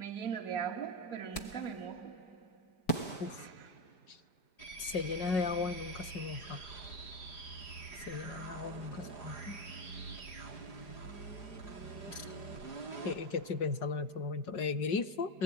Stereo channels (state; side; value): late; right; 5.5 ms